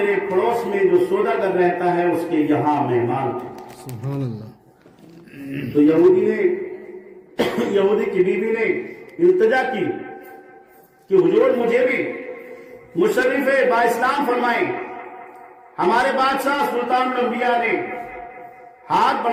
پڑوس میں جو سوداگر رہتا ہے اس کے یہاں مہمان تھے۔ سبحان اللہ۔ تو یہودی کی بیوی نے التجا کی کہ حضور مجھے بھی مشرف با اسلام فرمائیں۔ ہمارے بادشاہ سلطان الانبیاء نے ہاتھ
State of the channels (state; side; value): identical; both; correlation 1.00